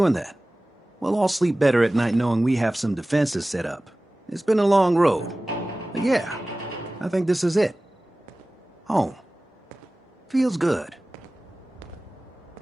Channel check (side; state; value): both; normal; correlation 0.97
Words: that. We'll all sleep better at night knowing we have some defenses set up. It's been a long road. But yeah, I think this is it. Home. Feels good.